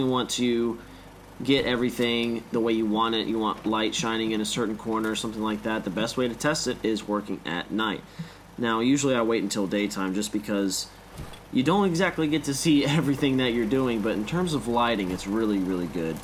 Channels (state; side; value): identical; both; correlation 1.00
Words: want to get everything the way you want it. You want light shining in a certain corner or something like that. The best way to test it is working at night. Now, usually I wait until daytime just because you don't exactly get to see everything that you're doing, but in terms of lighting, it's really, really good